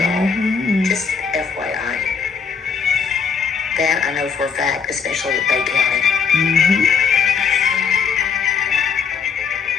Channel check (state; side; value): quieter; right; 6.1 dB